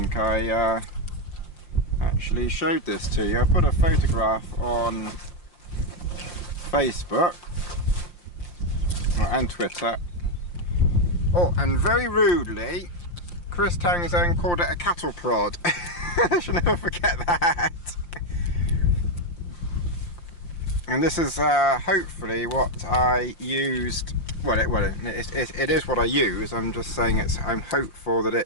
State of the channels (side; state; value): right; late; 5.7 ms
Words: I actually showed this to you. I put a photograph on Facebook and Twitter. Oh, and very rudely, Chris Townsend called it a cattle prod. I shall never forget that. And this is hopefully what I used. Well, it is what I use. I'm just saying I'm hopeful that